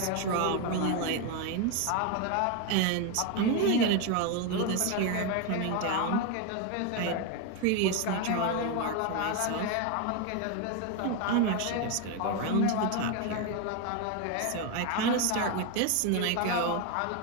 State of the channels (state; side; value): different; both; correlation 0.02